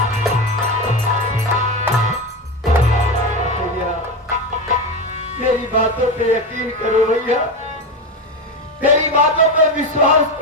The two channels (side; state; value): both; normal; correlation 0.18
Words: मेरी बातों पे यकीन करो भैया, मेरी बातों पे विश्वास